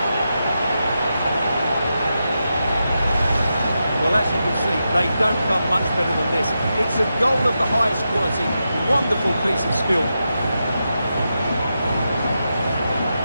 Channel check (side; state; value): both; inverted; correlation -0.88